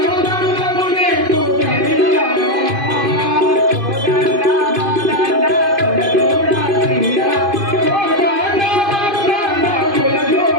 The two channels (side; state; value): left; late; 2.5 ms